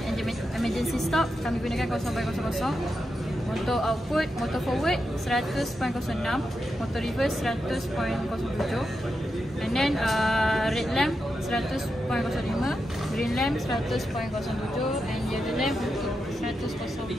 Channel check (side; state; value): both; normal; correlation 0.87